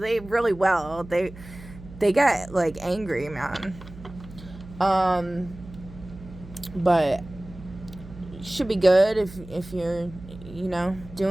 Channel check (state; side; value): noise; right; hum, 17 dB below the sound